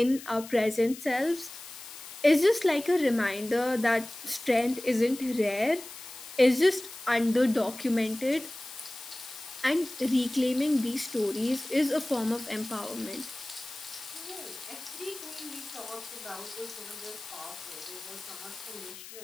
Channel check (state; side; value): noise; left; hiss, 14 dB below the sound